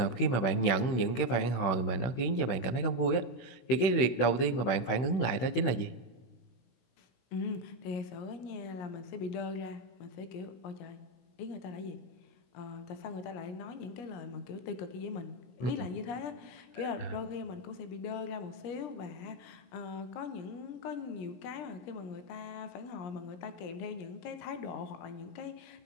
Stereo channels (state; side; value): late; right; 16 ms